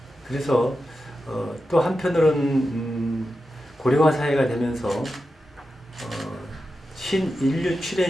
그래서 또 한편으로는 고령화 사회가 되면서 신인류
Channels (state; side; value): normal; both; correlation 0.90